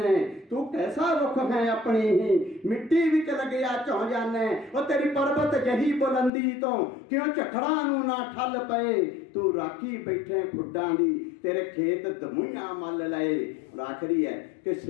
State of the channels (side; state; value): right; drops out; at 6.3 s